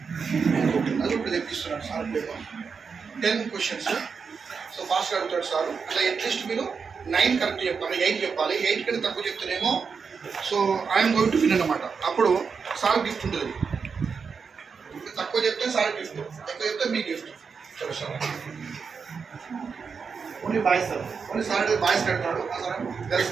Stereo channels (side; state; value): left; quieter; 5.6 dB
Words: అది ఇప్పుడు తెప్పిస్తున్నాను సార్. 10 questions. సో ఫాస్ట్గా అడుగుతాడు సార్. అట్లా అట్లీస్ట్ మీరు 9 కరెక్ట్ చెప్పాలి, 8 చెప్పాలి. 8 కంటే తక్కువ చెప్తేనేమో so I'm going to win అన్నమాట. అప్పుడు సార్ గిఫ్ట్ ఉంటుంది. తక్కువ చెప్తే సార్ గిఫ్ట్, ఎక్కువ చెప్తే మీ గిఫ్ట్. సరే sir. Only boys sir, only sir boys కడతాడు, సార్ గర్ల్స్